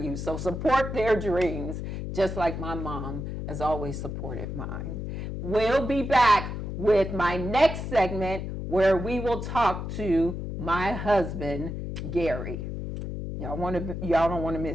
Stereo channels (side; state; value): left; noise; hum, 5 dB below the sound